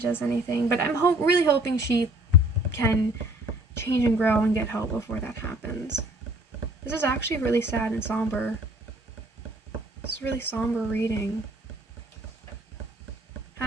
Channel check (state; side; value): normal; both; correlation 0.55